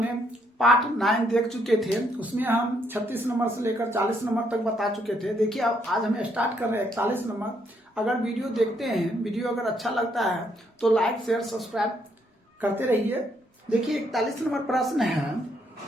पार्ट 9 देख चुके थे। उसमें हम 36 नंबर से लेकर 40 नंबर तक बता चुके थे। देखिए अब आज हमें स्टार्ट कर रहे हैं 41 नंबर। अगर वीडियो देखते हैं, वीडियो अगर अच्छा लगता है तो लाइक शेयर सब्सक्राइब करते रहिए। देखिए 41 नंबर प्रश्न है,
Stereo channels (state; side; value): normal; both; correlation 0.72